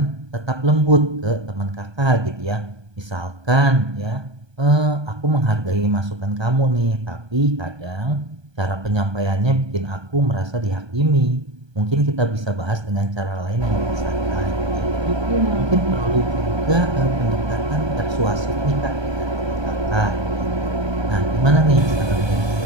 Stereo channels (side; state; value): left; late; 1.2 ms